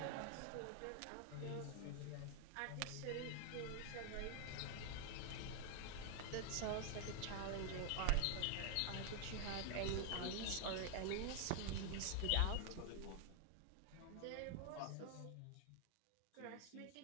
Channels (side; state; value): both; different; correlation 0.00